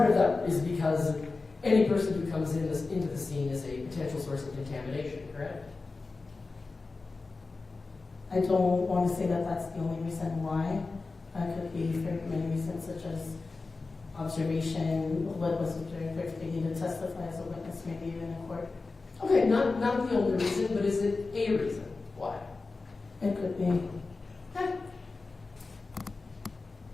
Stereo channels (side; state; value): right; quieter; 3.8 dB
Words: of that is because any person who comes into the scene is a potential source of contamination, correct? I don't want to say that that's the only reason why. That could be for many reasons, such as observation, what was observed, if they need to testify as a witness, maybe even in court. Okay, not the only reason, but is it a reason why? It could be.